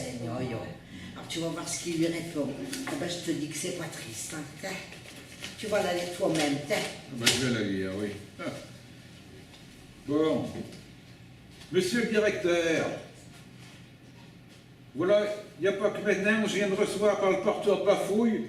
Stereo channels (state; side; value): identical; both; correlation 1.00